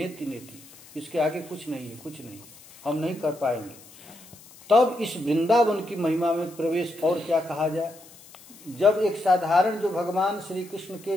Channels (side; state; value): left; noise; hiss, 22 dB below the sound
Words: नेति, इसके आगे कुछ नहीं है, कुछ नहीं, हम नहीं कर पाएंगे। तब इस वृंदावन की महिमा में प्रवेश और क्या कहा जाए। जब एक साधारण जो भगवान श्री कृष्ण